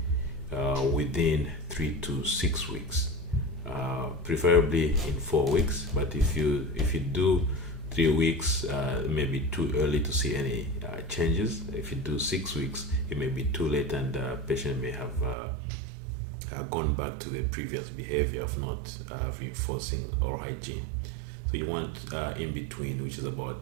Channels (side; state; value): left; drops out; at 15.4 s